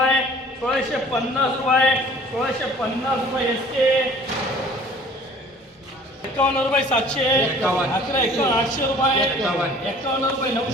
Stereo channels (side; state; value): both; normal; correlation 0.50